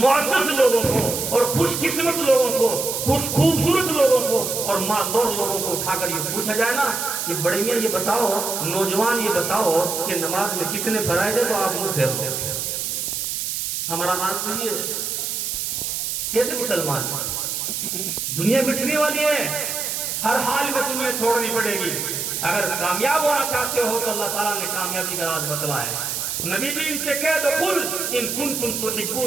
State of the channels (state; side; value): noise; right; hiss, 2 dB below the sound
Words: लोगों को और खुशकिस्मत लोगों को, खूबसूरत लोगों को और मालदौर लोगों को उठाकर ये पूछा जाए ना कि बड़े मियां ये बताओ, नौजवान ये बताओ कि नमाज में कितने फराइज है, तो आप मुंह फेर लो। हमारा हाल तो ये कैसे मुसलमान? दुनिया मिटने वाली है, हर हाल में दुनिया छोड़नी पड़ेगी। अगर कामयाब होना चाहते हो तो अल्लाह ताला ने कामयाबी का राज बतलाया है। नबी जी इनसे कह दो, कुल इन कुंतुम